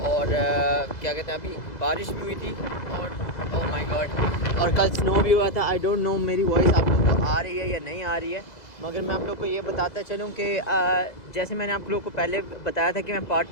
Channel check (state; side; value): late; right; 2.0 ms